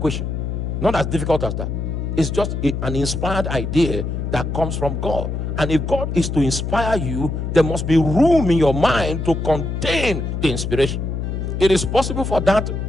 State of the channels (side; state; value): left; noise; hum, 3 dB below the sound